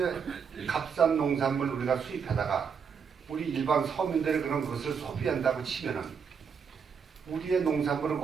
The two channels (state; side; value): quieter; left; 6.5 dB